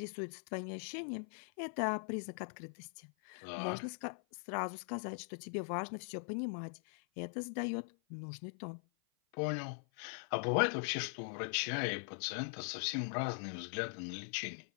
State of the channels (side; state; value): right; silent; 50 dB below the other